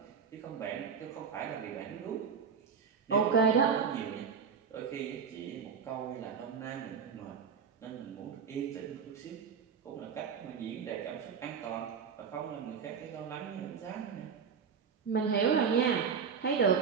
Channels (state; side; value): quieter; left; 6.4 dB